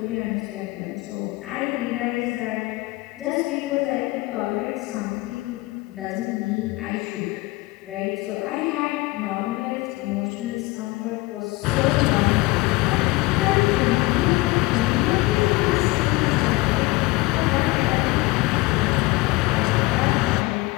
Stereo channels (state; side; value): quieter; right; 21.5 dB